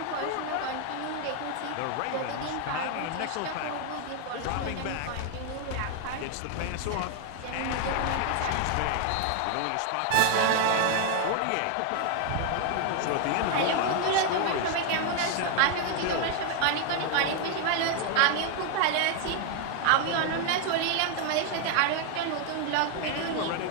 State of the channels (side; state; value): both; different; correlation 0.00